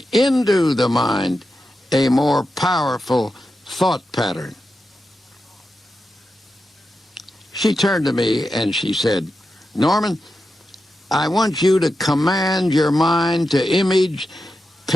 into the mind a more powerful thought pattern. She turned to me and she said, "Norman, I want you to command your mind to image,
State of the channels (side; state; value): both; normal; correlation 0.89